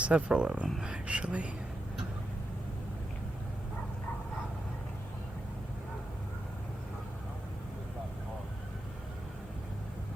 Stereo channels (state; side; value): normal; both; correlation 0.88